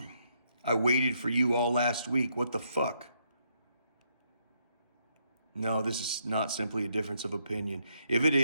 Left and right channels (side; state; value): both; inverted; correlation -0.75